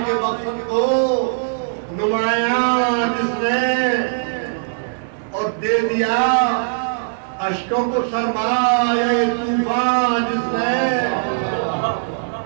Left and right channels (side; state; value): left; silent; digital silence